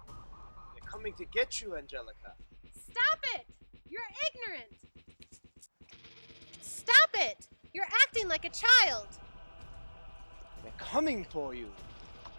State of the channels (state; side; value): inverted; both; correlation -1.00